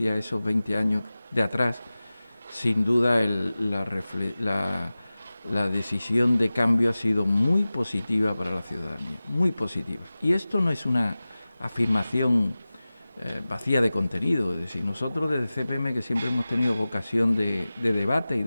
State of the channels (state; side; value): inverted; both; correlation -0.97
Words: a esos 20 años de atrás, sin duda la decisión de cambio ha sido muy positiva para la ciudadanía, muy positiva. Y esto no es una afirmación vacía de contenido, es decir, nosotros desde CPM, que siempre hemos tenido vocación de debate y